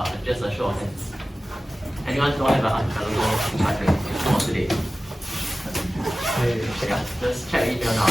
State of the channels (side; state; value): both; normal; correlation 0.96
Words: Just a show of hands. Anyone don't have an archipelago link for today? Yeah, just check email now.